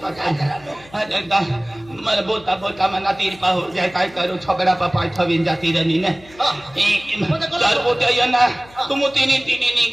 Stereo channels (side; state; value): left; noise; hum, 24 dB below the sound